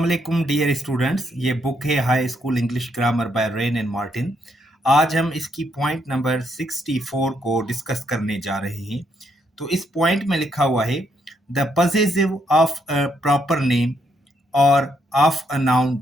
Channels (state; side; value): normal; both; correlation 0.75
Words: dear students. ये बुक है high school English grammar bye rain and Martin. आज हम इसकी पॉइंट नंबर 64 को डिस्कस करने जा रहे हैं। तो इस पॉइंट में लिखा हुआ है the possessive of a proper name or of a noun